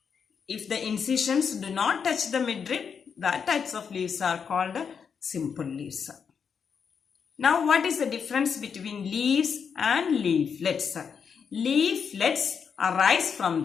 If the incisions do not touch the midrib, that types of leaves are called simple leaves. Now, what is the difference between leaves and leaflets? Leaflets arise from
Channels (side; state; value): right; quieter; 6.6 dB